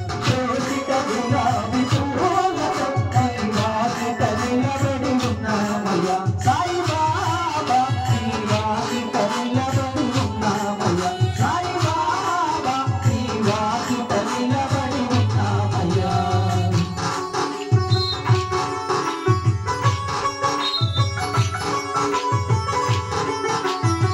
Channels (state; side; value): identical; both; correlation 1.00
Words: దోసిట గులాబీ పూలతో నీ వాకిట నిలబడి ఉన్నామయ్యా. సాయి బాబా నీ వాకిట నిలబడి ఉన్నామయ్యా. సాయి బాబా నీ వాకిట నిలబడి ఉన్నామయ్యా.